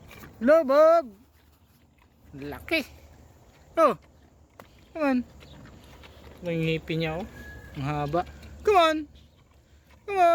Hello Bob. Laki. Oh. Come on. May ngipin niya oh. Ang haba. Come on. Come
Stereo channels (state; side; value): identical; both; correlation 1.00